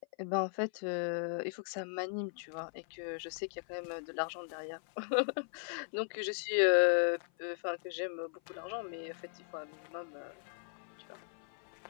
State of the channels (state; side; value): silent; right; 53 dB below the other